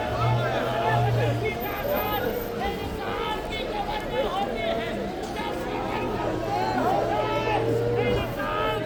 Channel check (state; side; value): identical; both; correlation 1.00